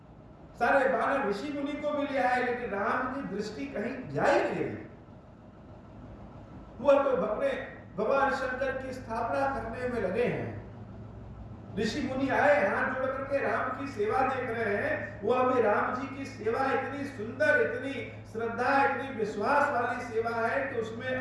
सारे बानर ऋषि मुनि को भी लिया है, लेकिन राम की दृष्टि कहीं जा ही नहीं रही। वो तो अपने भगवान शंकर की स्थापना करने में लगे हैं। ऋषि मुनि आए, हाथ जोड़ करके राम की सेवा देख रहे हैं, वो अभी राम जी की सेवा इतनी सुंदर, इतनी श्रद्धा, इतनी विश्वास वाली सेवा है कि उसमें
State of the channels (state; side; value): identical; both; correlation 1.00